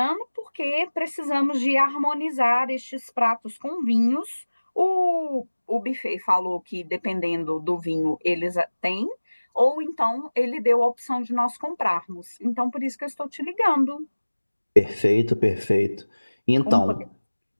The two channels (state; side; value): inverted; both; correlation -1.00